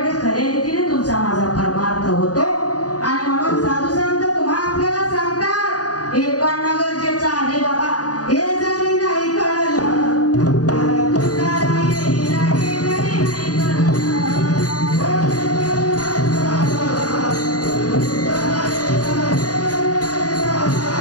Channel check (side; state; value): right; late; 0.68 ms